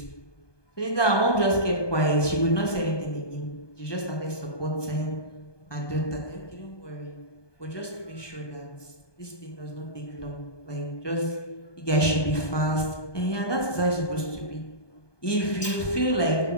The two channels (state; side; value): late; right; 1.2 ms